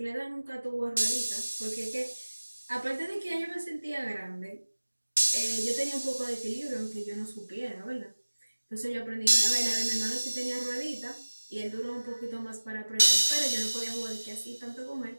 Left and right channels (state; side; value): inverted; both; correlation -1.00